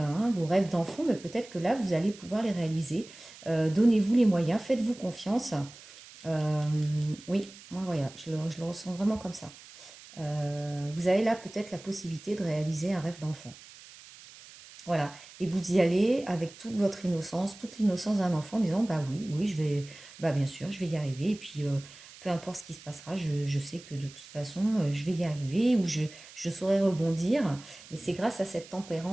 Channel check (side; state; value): right; noise; hiss, 19 dB below the sound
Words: vos rêves d'enfant, mais peut-être que là, vous allez pouvoir les réaliser. Donnez-vous les moyens, faites-vous confiance. Euh, oui, moi, voilà, je le ressens vraiment comme ça. Vous avez là peut-être la possibilité de réaliser un rêve d'enfant. Voilà. Et vous y allez avec toute votre innocence, toute l'innocence d'un enfant, en disant, bah oui, oui, je vais, bah bien sûr, je vais y arriver. Et puis, peu importe ce qui se passera, je sais que de toute façon, je vais y arriver ou je saurai rebondir. Mais c'est grâce à cette